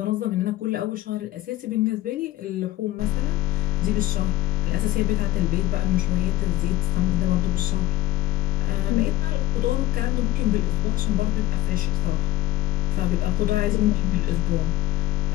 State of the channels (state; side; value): quieter; right; 15.0 dB